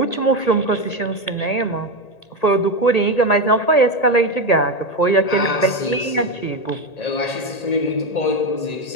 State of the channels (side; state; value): right; late; 1.8 ms